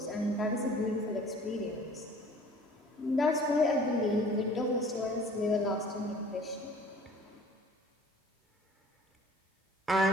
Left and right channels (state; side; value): normal; both; correlation 0.49